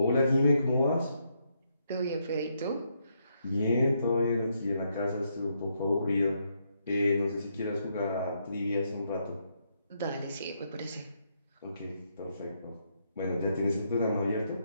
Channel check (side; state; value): both; inverted; correlation -0.77